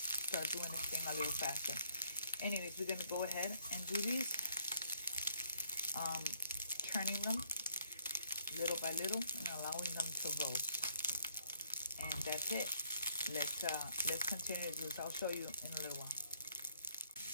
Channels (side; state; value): both; inverted; correlation -0.68